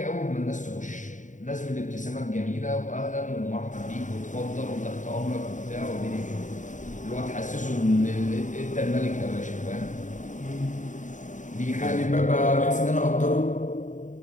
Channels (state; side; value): late; right; 0.36 ms